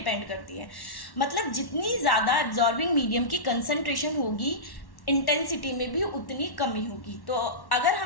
करती है। मतलब जितनी ज़्यादा एब्जॉर्बिंग मीडियम की कंसंट्रेशन होगी, इंटेंसिटी में भी उतनी कमी होगी। तो अगर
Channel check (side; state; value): right; late; 1.1 ms